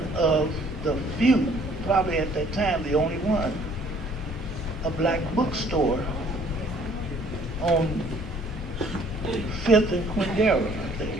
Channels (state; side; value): normal; both; correlation 0.58